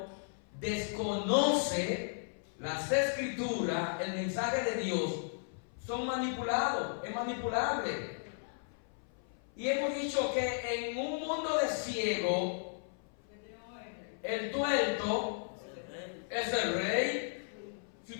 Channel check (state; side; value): silent; right; 54 dB below the other